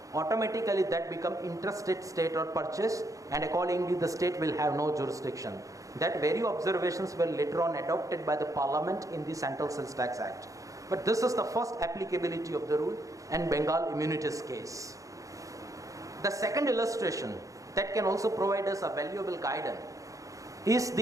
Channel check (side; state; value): left; late; 0.16 ms